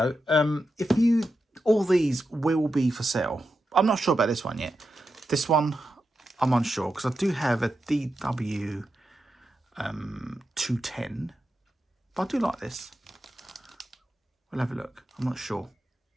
All these will be for sale. I'm not sure about this one yet. This one, I'm unsure because I do have a DW 210. But I do like this. We'll have a look. I'm not sure.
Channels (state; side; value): normal; both; correlation 0.88